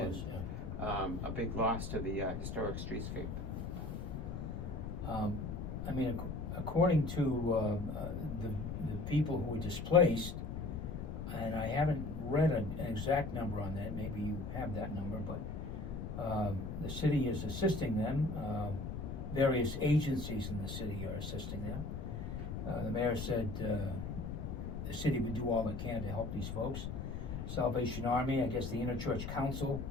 yeah. A big loss to the historic streetscape. I mean, according to the people who were displaced, and I haven't read an exact number on that, maybe you have that number, but the city is assisting them. Various agencies in the city are assisting them. The mayor said the city would do all it can to help these folks. Salvation Army, I guess the Interchurch Council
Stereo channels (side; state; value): left; noise; rumble, 5 dB below the sound